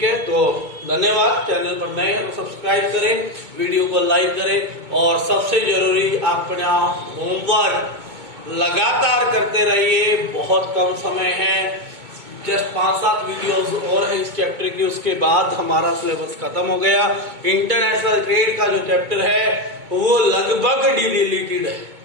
है, तो धन्यवाद। चैनल पर नए हैं तो सब्सक्राइब करें, वीडियो को लाइक करें, और सबसे जरूरी अपना होमवर्क लगातार करते रहिए। बहुत कम समय है, जस्ट 5-7 वीडियोस और है इस चैप्टर की, उसके बाद हमारा सिलेबस खत्म हो गया। इंटरनेशनल ट्रेड का जो चैप्टर है वो लगभग डिलीटेड है।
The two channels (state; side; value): late; left; 2.2 ms